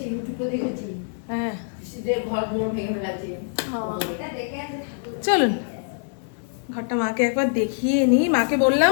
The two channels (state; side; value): silent; right; digital silence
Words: ইউটিউবে দেখেছি হ্যাঁ যে ঘরগুলো ভেঙে ফেলেছে। চলুন ঘরটা মাকে একবার দেখিয়ে নিই। মাকে বললাম